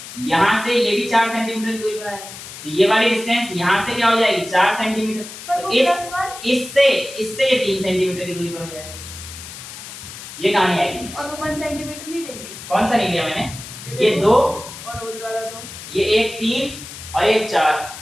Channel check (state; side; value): noise; left; hiss, 13 dB below the sound